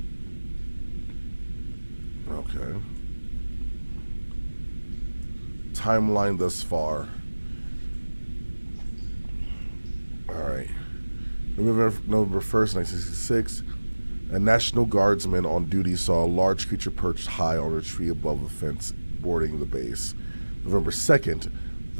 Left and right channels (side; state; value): both; inverted; correlation -1.00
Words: Okay. Timeline thus far. Alright. November 1st, 1966, a National Guardsman on duty saw a large creature perched high on a tree above a fence bordering the base. November 2nd,